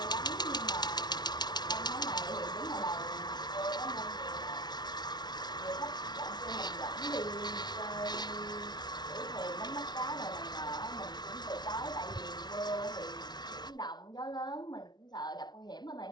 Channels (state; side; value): late; right; 0.20 ms